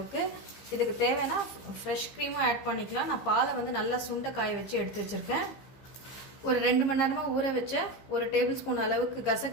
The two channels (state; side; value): late; right; 15 ms